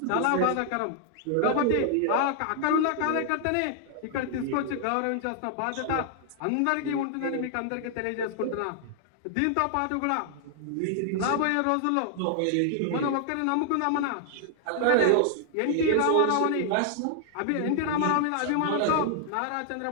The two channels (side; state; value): both; different; correlation 0.00